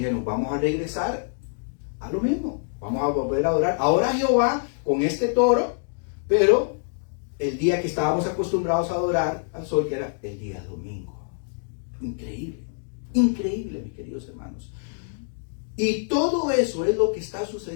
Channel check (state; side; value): silent; right; digital silence